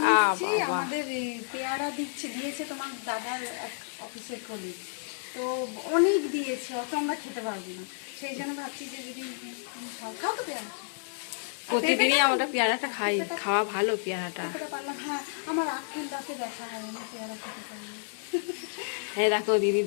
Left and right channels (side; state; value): right; silent; 57 dB below the other